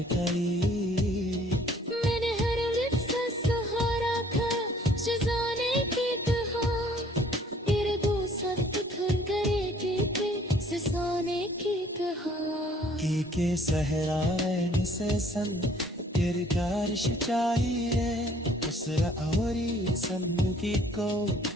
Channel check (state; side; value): normal; both; correlation 0.58